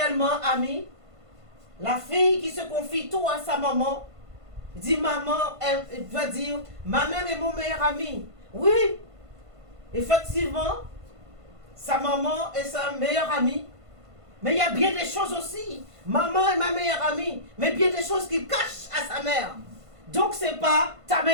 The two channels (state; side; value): late; left; 1.5 ms